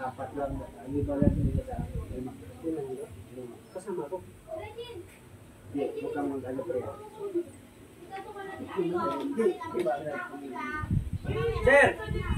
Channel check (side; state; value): both; identical; correlation 1.00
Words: lang. Hindi ba lang nila sa lima? Kasama ko. Hindi, mukhang mag-ano, pre. Sir.